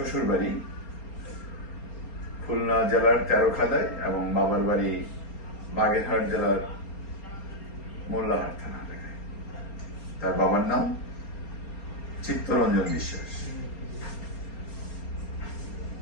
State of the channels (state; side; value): late; right; 4.3 ms